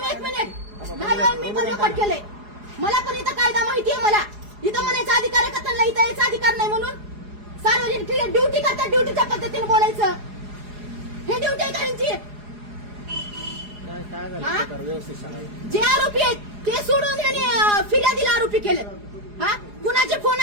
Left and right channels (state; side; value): late; left; 4.8 ms